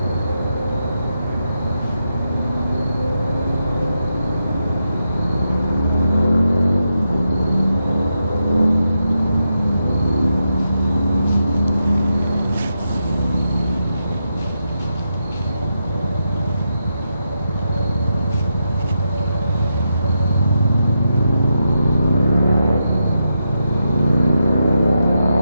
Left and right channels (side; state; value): both; inverted; correlation -0.85